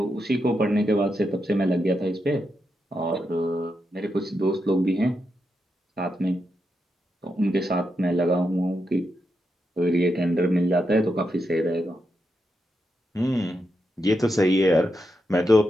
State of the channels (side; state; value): both; normal; correlation 0.85